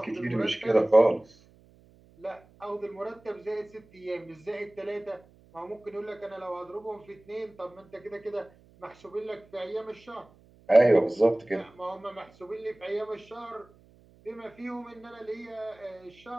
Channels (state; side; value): noise; right; hum, 27 dB below the sound